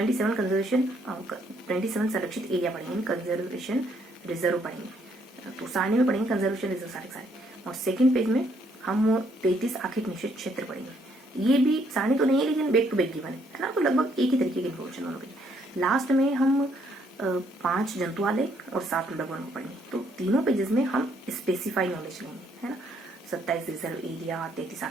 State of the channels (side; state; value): both; normal; correlation 0.69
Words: संरक्षित एरिया पढ़ेंगे, कंजर्वेशन रिजर्व पढ़ेंगे। तो सारणी में पढ़ेंगे कंजर्वेशन रिजर्व सारे, और सेकंड पेज में हम 33 आर्थिक निषेध क्षेत्र पढ़ेंगे। ये भी सारणी तो नहीं है लेकिन बैक टू बैक गिवन है ना, तो लगभग एक ही तरीके की इन्फॉर्मेशन दोनों पेज। लास्ट में हम 5 जंतुआलय और 7 मृगवन को पढ़ेंगे। तो तीनों पेजेस में हम स्पेसिफाई नॉलेज लेंगे, है ना। 27 रिजर्व एरिया, 33